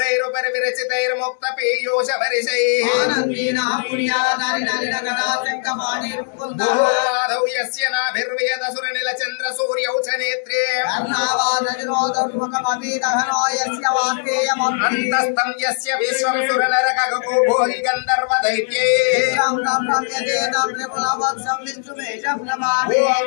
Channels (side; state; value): right; silent; 61 dB below the other